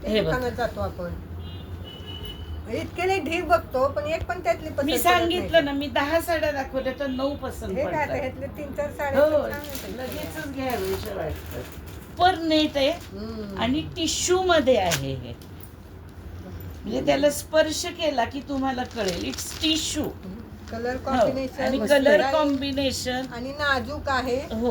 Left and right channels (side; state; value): both; identical; correlation 1.00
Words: हे बघ. दुकानात जातो आपण इतके नाही ढीग बघतो पण एक पण त्यातली पसंत मी पडत सांगितलं ना, नाही. मी 10 साड्या दाखवल्या तर 9 पसंत हे काय आता पडतात. ह्यातले 3-4 साड्या हो तर छान आहेत. लगेचच घ्यावेशा वाटतात. पर नेट आहे हम्म. आणि टिश्यू मध्ये आहे हे. म्हणजे त्याला स्पर्श केला की तुम्हाला कळेल इट्स टिश्यू. कलर आणि कॉम्बिनेशन कलर कॉम्बिनेशन आणि नाजूक आहे.